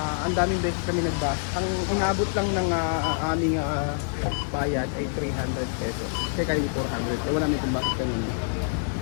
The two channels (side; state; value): right; silent; digital silence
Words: ang daming beses kami nagbus. Ang inabot lang ng aming bayad ay 300 pesos. Kaya kayo 400. Wala may kung bakit kanina.